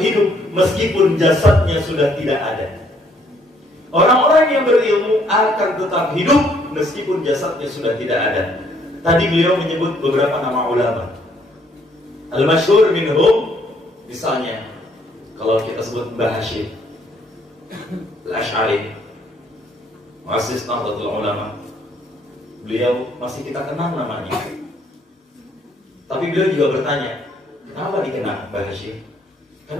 meskipun jasadnya sudah tidak ada. Orang-orang yang berilmu akan tetap hidup meskipun jasadnya sudah tidak ada. Tadi beliau menyebut beberapa nama ulama. Al-masyhur minhum, misalnya kalau kita sebut Mbah Hashim Al-Asy'ari, muassis Nahdlatul Ulama, beliau masih kita kenal namanya. Tapi beliau juga bertanya, kenapa dikenal Mbah Hashim?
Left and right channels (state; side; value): normal; both; correlation 0.66